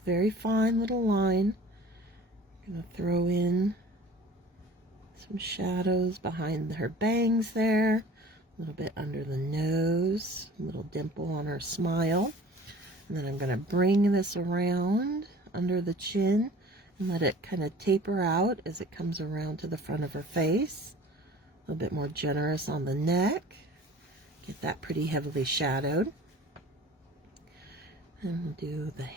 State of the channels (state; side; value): normal; both; correlation 0.45